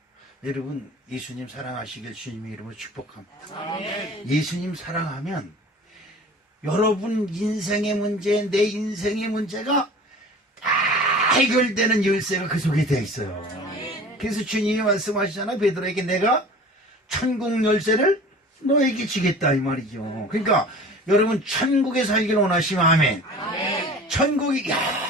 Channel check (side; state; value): both; normal; correlation 0.42